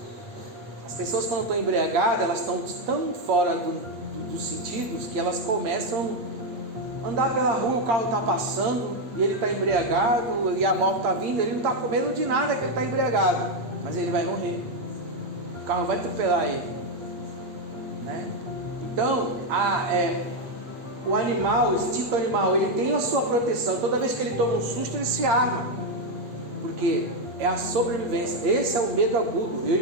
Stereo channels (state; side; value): late; left; 8.4 ms